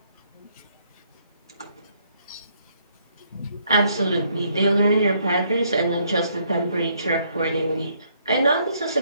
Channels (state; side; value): inverted; both; correlation -0.70